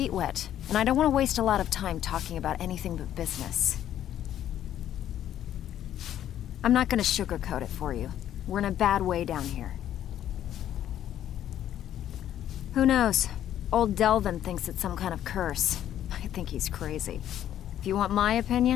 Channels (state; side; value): quieter; right; 11.3 dB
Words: wet. And I don't want to waste a lot of time talking about anything but business. I'm not gonna sugarcoat it for you. We're in a bad way down here. Who knows? Old Delvin thinks it's some kind of curse. I think he's crazy. If you want my